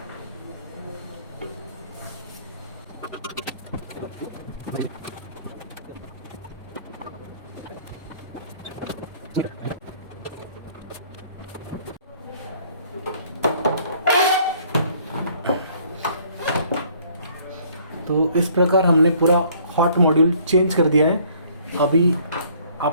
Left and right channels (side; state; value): both; inverted; correlation -0.59